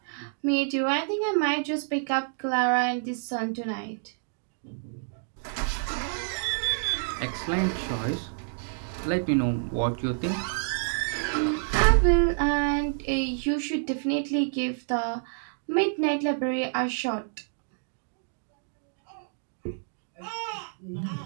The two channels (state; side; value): silent; left; digital silence